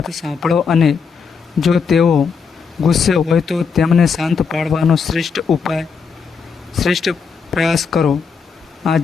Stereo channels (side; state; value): right; quieter; 5.7 dB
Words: સાંભળો અને જો તેઓ ગુસ્સે હોય તો તેમને શાંત પાડવાનો શ્રેષ્ઠ પ્રયાસ કરો.